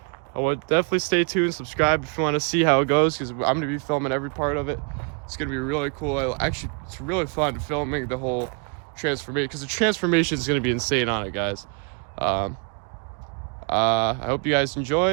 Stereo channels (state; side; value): quieter; left; 37.3 dB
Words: I would definitely stay tuned, subscribe if you want to see how it goes, because I'm going to be filming every part of it. It's going to be really cool. It's really fun filming the whole transformation, because the transformation is going to be insane on it, guys. I hope you guys